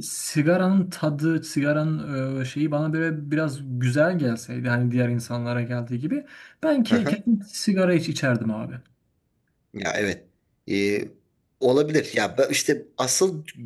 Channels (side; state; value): both; identical; correlation 1.00